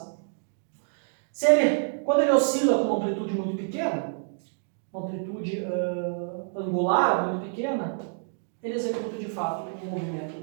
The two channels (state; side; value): silent; left; digital silence